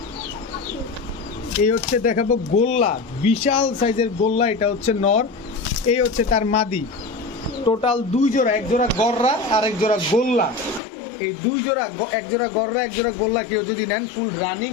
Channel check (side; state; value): right; drops out; at 10.8 s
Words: এই হচ্ছে দেখাবো গোল্লা, বিশাল সাইজের গোল্লা, এটা হচ্ছে নর, এই হচ্ছে তার মাদি। টোটাল 2 জোড়া, এক জোড়া গররা আর এক জোড়া গোল্লা। এই 2 জোড়া, এক জোড়া গররা এক জোড়া গোল্লা কেউ যদি নেন ফুল রানিং